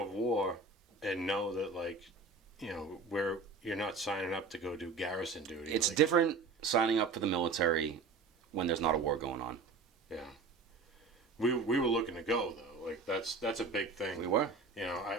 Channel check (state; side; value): quieter; left; 4.1 dB